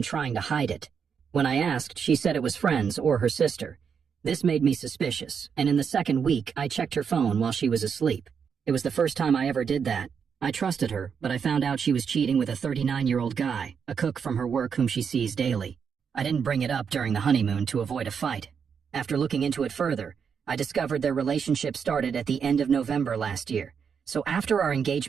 trying to hide it. When I asked, she said it was friends or her sister. This made me suspicious, and in the second week, I checked her phone while she was asleep. It was the first time I ever did that. I trusted her, but I found out she was cheating with a 39-year-old guy, a cook from her work whom she sees daily. I didn't bring it up during the honeymoon to avoid a fight. After looking into it further, I discovered their relationship started at the end of November last year, so after our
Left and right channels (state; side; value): quieter; left; 6.7 dB